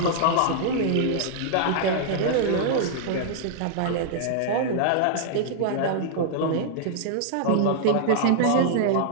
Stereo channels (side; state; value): both; different; correlation -0.01